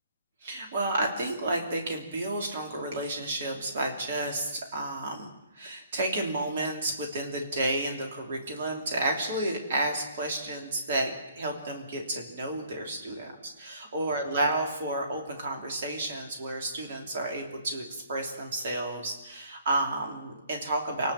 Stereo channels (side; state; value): both; inverted; correlation -0.60